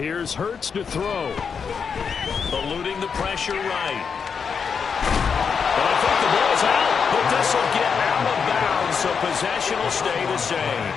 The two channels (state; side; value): quieter; right; 6.2 dB